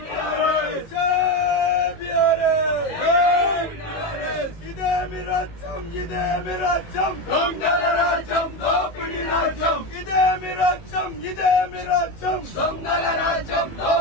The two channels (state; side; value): late; right; 18 ms